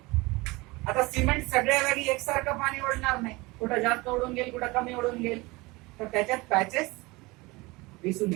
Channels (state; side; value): quieter; left; 23.3 dB